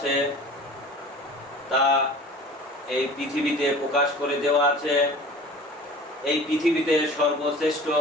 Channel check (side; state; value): both; normal; correlation 0.42